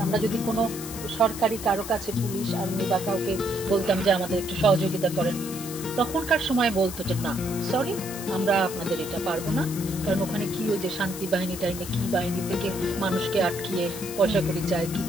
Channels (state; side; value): noise; left; hiss, 10 dB below the sound